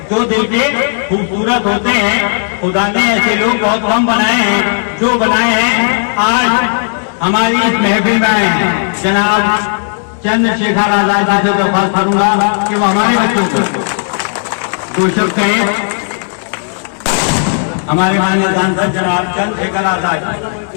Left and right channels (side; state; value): right; silent; digital silence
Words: जो दिल के खूबसूरत होते हैं, खुदा ने ऐसे लोग बहुत कम बनाए हैं। जो बनाए हैं आज हमारी इस महफिल में आए हैं। जनाब चंद्रशेखर आजाद जी से दरख्वास्त करूंगा कि वो हमारे बच्चों को दो शब्द कहें। हमारे माननीय सांसद जनाब चंद्रशेखर आजाद